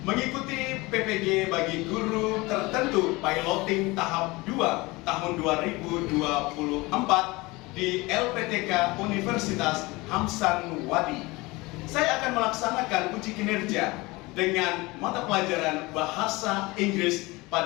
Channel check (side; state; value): right; quieter; 22.8 dB